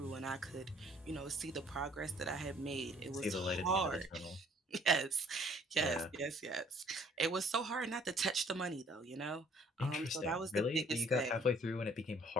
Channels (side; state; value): both; normal; correlation 0.59